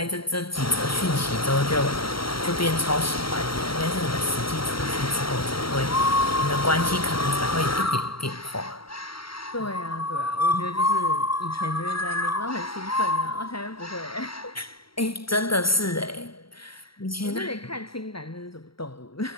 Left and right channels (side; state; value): right; late; 0.74 ms